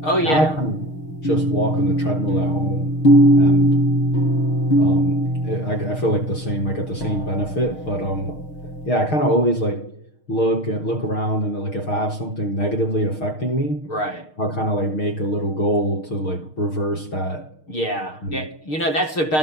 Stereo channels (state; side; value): late; right; 6.5 ms